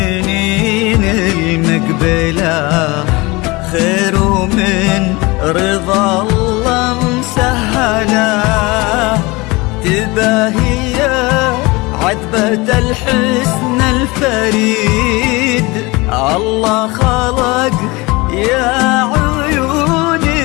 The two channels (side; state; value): right; quieter; 23.9 dB